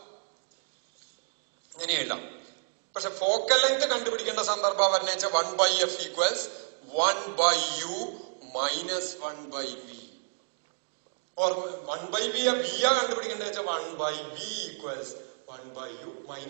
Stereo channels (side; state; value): left; silent; 58 dB below the other